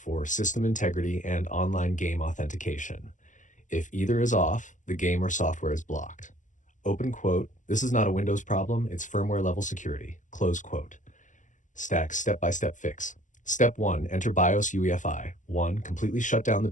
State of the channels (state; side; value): late; right; 0.37 ms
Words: system integrity and online game authentication. If either is off, the game or software is blocked. Open quote, this is not a Windows problem, it's firmware level security, close quote. Stack step-by-step fix. Step 1, enter BIOS UEFI. 1, completely shut down the